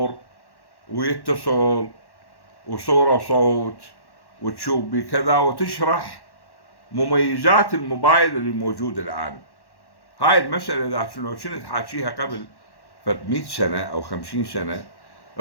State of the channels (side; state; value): right; late; 1.1 ms